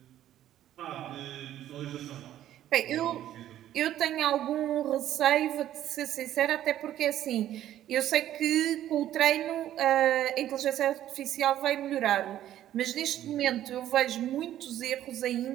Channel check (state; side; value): quieter; left; 12.2 dB